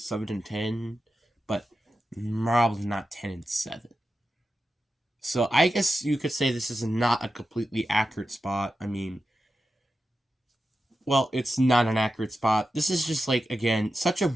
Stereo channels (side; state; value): both; normal; correlation 0.91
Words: but probably not 10-7. So I guess you could say this is not a completely accurate spot. I mean, well, it's not an accurate spot. This is just like again such a